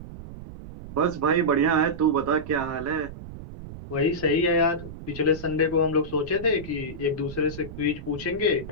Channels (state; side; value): noise; right; rumble, 13 dB below the sound